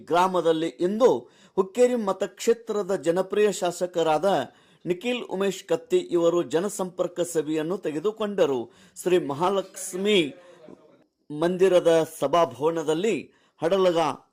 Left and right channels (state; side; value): identical; both; correlation 1.00